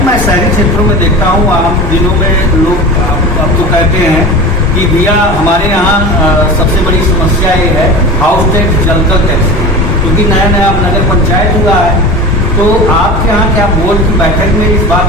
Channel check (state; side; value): normal; both; correlation 0.33